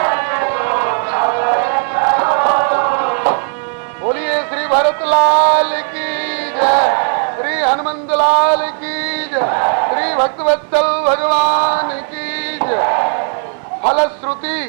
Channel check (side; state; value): left; silent; 56 dB below the other